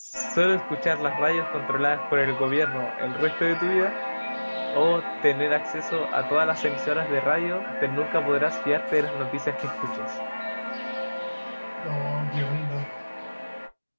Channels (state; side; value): inverted; both; correlation -1.00